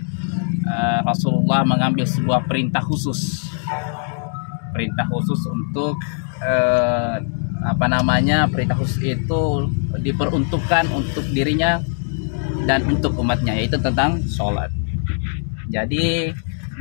Rasulullah mengambil sebuah perintah khusus untuk perintah khusus itu diperuntukkan untuk dirinya dan untuk umatnya, yaitu tentang sholat. Jadi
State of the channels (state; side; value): silent; right; 63 dB below the other